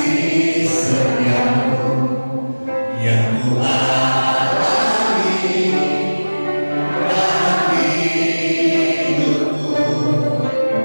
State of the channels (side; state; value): both; inverted; correlation -1.00